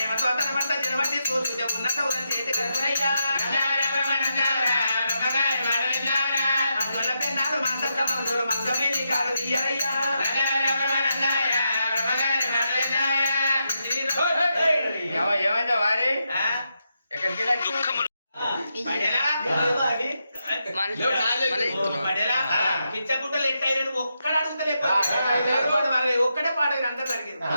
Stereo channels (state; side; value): inverted; both; correlation -0.84